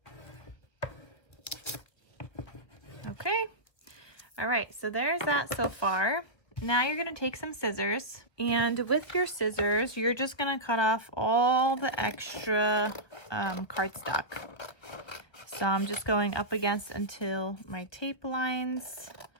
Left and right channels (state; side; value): late; right; 1.5 ms